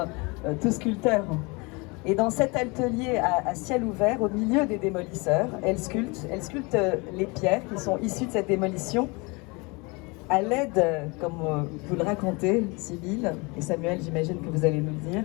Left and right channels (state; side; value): quieter; right; 27.7 dB